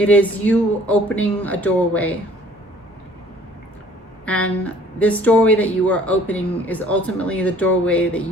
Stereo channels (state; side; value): normal; both; correlation 0.54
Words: is you opening a doorway. And this doorway that you are opening is ultimately the doorway that